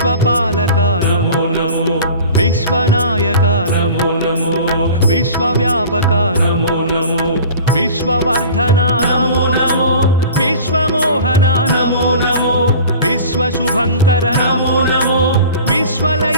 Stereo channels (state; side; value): inverted; both; correlation -0.41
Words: నమో నమో విశ్వనాయక నమో నమో విశ్వవ్యాపక నమో నమో విశ్వవర్ధన నమో నమో విశ్వమోహన నమో నమో విశ్వశుభంకర నమో నమో